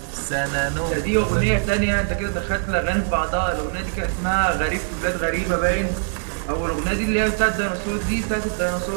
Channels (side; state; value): left; silent; 64 dB below the other